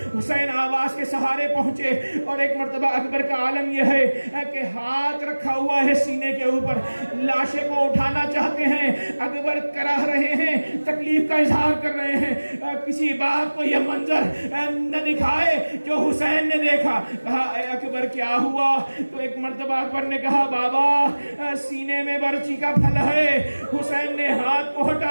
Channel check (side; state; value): both; inverted; correlation -1.00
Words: حسین آواز کے سہارے پہنچے اور ایک مرتبہ اکبر کا عالم یہ ہے کہ ہاتھ رکھا ہوا ہے سینے کے اوپر، لاشے کو اٹھانا چاہتے ہیں، اکبر کراہ رہے ہیں، تکلیف کا اظہار کر رہے ہیں، کسی بات کو یہ منظر نہ دکھائے جو حسین نے دیکھا۔ کہا اے اکبر کیا ہوا؟ تو ایک مرتبہ اکبر نے کہا بابا سینے میں برچی کا پھل ہے۔ حسین نے ہاتھ کو